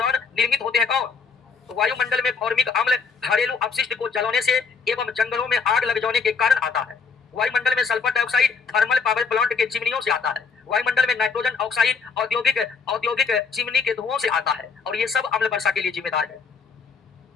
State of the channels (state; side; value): quieter; right; 5.2 dB